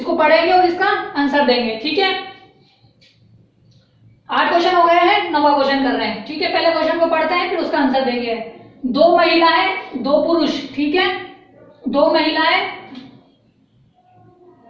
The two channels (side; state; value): both; identical; correlation 1.00